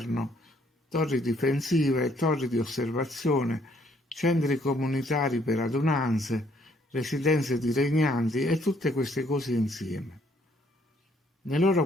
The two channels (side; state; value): both; normal; correlation 0.66